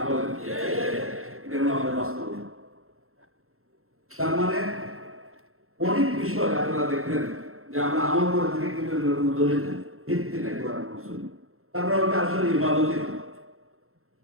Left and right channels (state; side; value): late; left; 0.62 ms